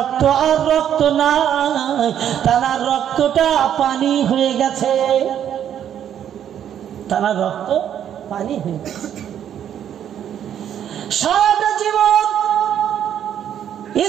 আর রক্ত নাই, তানার রক্তটা পানি হয়ে গেছে, তানার রক্ত পানি হয়ে গেছে। সারাটা জীবন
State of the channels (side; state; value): left; quieter; 9.8 dB